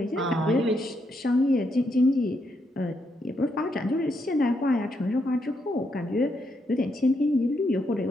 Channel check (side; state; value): both; normal; correlation 0.79